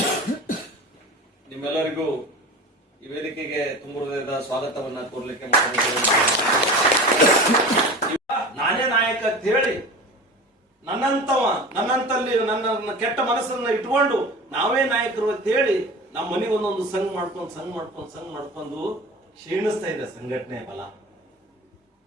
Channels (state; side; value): normal; both; correlation 0.35